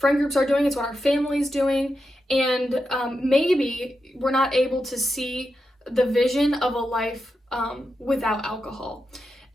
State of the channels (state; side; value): normal; both; correlation 0.87